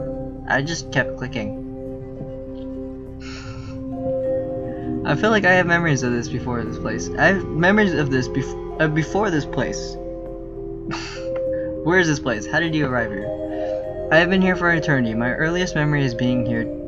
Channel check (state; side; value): identical; both; correlation 1.00